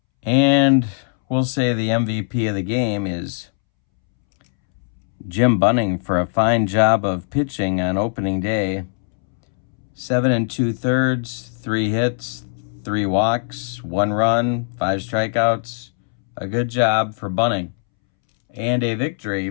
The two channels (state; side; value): silent; right; 66 dB below the other